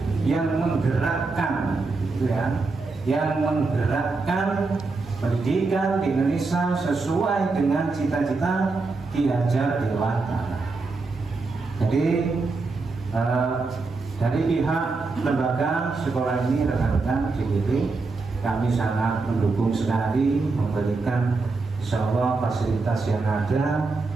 yang menggerakkan, yang menggerakkan pendidikan di Indonesia sesuai dengan cita-cita Ki Hajar Dewantara. Jadi dari pihak lembaga sekolah ini, rekan-rekan CDP, kami sangat mendukung sekali, memberikan insyaallah fasilitas yang ada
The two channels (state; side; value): quieter; left; 3.9 dB